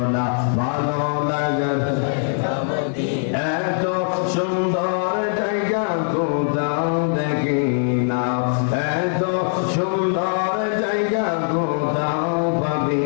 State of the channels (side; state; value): right; silent; digital silence